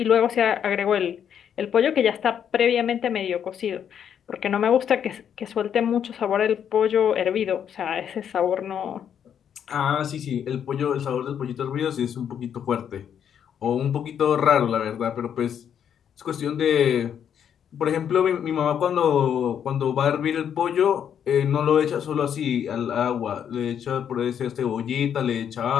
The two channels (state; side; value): quieter; right; 8.7 dB